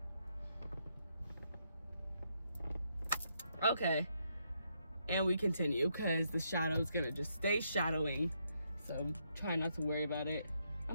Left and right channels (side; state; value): both; inverted; correlation -0.77